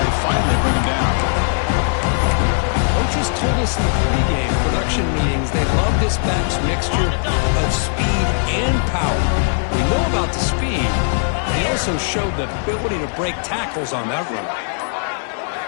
finally bring him down. Coaches told us in the pregame production meetings they love this back's mixture of speed and power. We know about the speed. He also showed the ability to break tackles on that run.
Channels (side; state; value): right; silent; 66 dB below the other